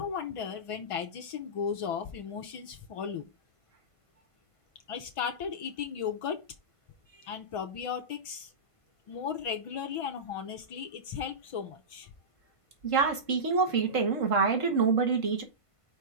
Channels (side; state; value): right; late; 1.5 ms